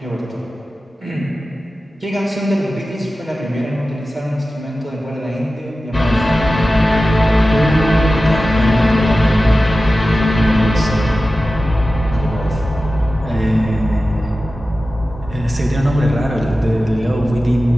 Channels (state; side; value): normal; both; correlation 0.95